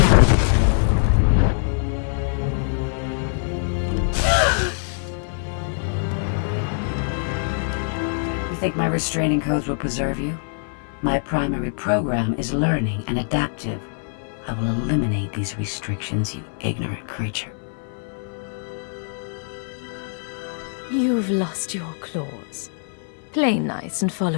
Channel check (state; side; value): silent; right; 63 dB below the other